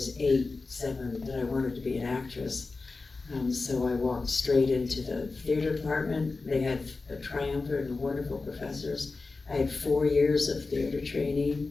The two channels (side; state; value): right; quieter; 3.8 dB